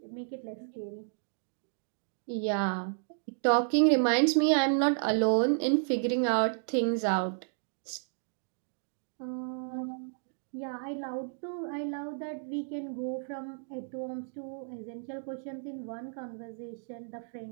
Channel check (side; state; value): left; silent; digital silence